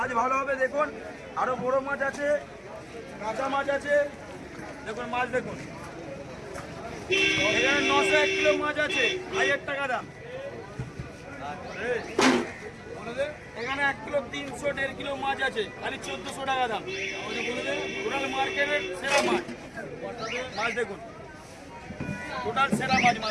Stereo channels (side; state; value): both; identical; correlation 1.00